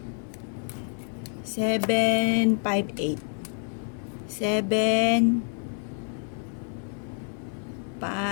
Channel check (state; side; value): silent; right; 57 dB below the other